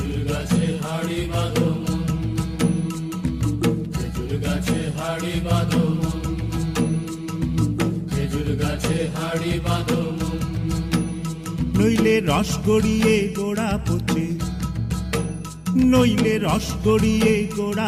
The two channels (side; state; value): both; identical; correlation 1.00